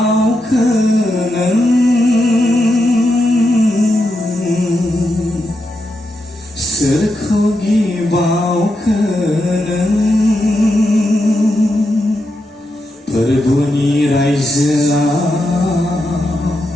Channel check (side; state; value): both; normal; correlation 0.85